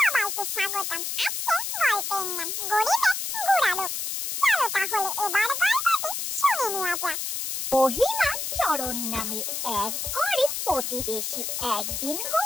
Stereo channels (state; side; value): noise; left; hiss, 3 dB below the sound